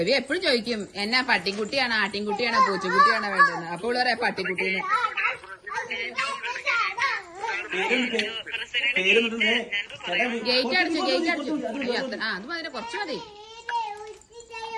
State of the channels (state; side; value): identical; both; correlation 1.00